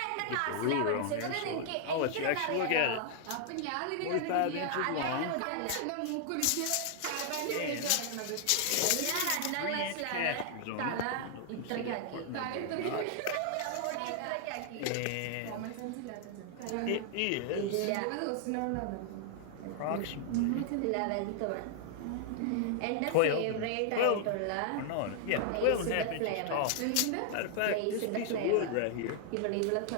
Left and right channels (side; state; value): both; different; correlation 0.00